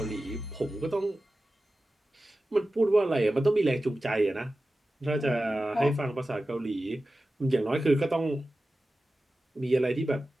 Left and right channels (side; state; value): both; normal; correlation 0.94